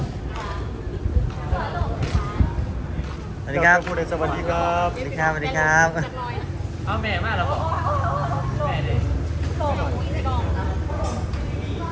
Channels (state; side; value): identical; both; correlation 1.00